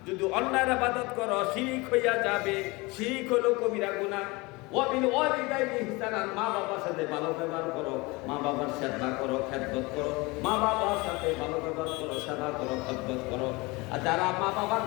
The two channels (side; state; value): right; quieter; 24.4 dB